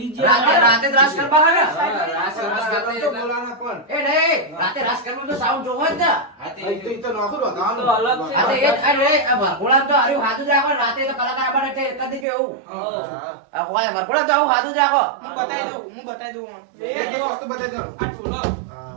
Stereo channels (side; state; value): left; drops out; at 12.2 s